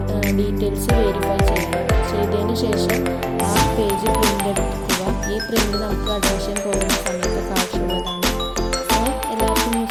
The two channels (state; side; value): identical; both; correlation 1.00